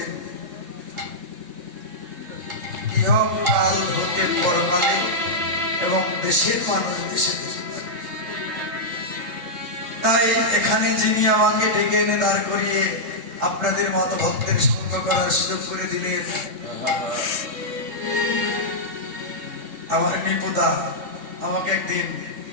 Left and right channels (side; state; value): left; late; 3.3 ms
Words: ইহকাল হতে পরকালে এবং দেশের মানুষ দেশে তাই এখানে যিনি আমাকে ডেকে এনে দাঁড় করিয়ে আপনাদের মতো ভক্তের সঙ্গ করার সুযোগ করে দিলেন, আমার নিপুদা আমাকে একদিন